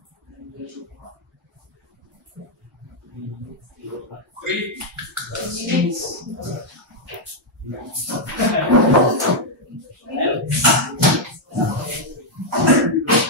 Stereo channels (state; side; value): normal; both; correlation -0.02